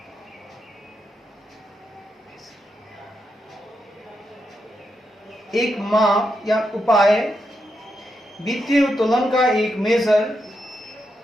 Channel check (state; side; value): normal; both; correlation 0.84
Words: एक माप या उपाय, वित्तीय उत्तोलन का एक मेजर